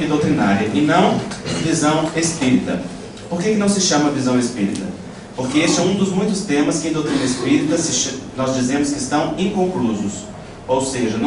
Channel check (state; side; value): identical; both; correlation 1.00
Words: doutrinária, e não visão espírita. Por que não se chama visão espírita? Porque este é um dos muitos temas que em doutrina espírita nós dizemos que estão inconclusos, ou seja,